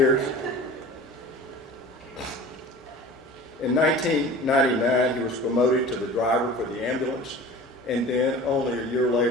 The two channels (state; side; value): normal; both; correlation 0.39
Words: In 1999, he was promoted to the driver for the ambulance, and then only a year